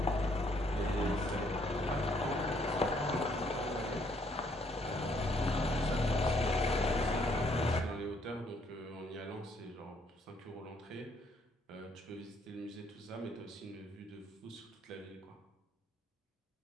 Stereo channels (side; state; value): both; normal; correlation 0.68